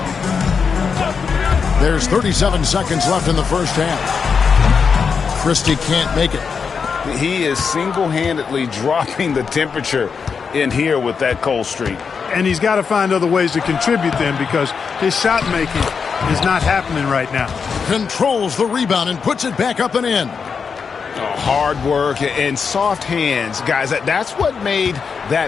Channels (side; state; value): right; quieter; 5.8 dB